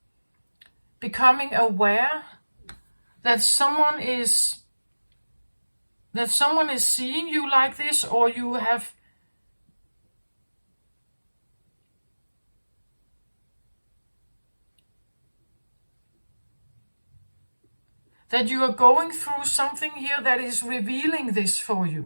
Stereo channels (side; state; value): both; inverted; correlation -1.00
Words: becoming aware that someone is seeing you like this, or you have that you are going through something here that is revealing this for